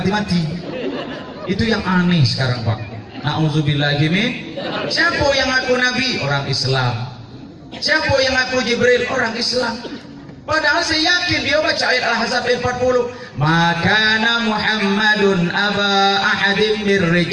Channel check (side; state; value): both; identical; correlation 1.00